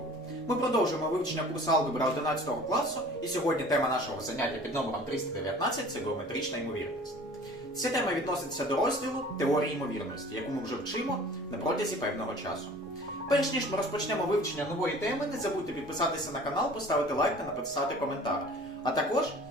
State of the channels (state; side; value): normal; both; correlation 0.46